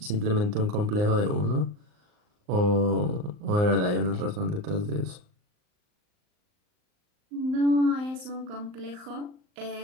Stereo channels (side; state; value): left; late; 39 ms